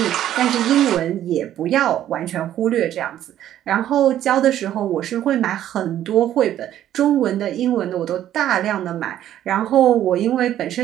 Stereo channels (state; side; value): quieter; left; 11.8 dB